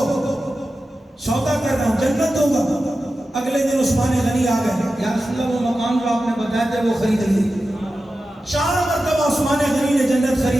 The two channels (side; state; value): both; normal; correlation 0.92